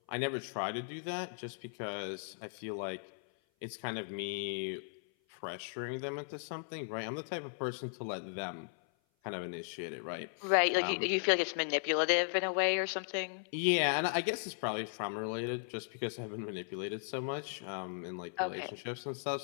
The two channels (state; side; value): silent; right; 53 dB below the other